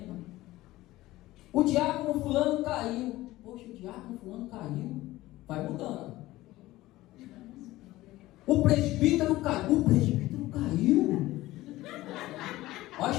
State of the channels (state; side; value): quieter; right; 17.2 dB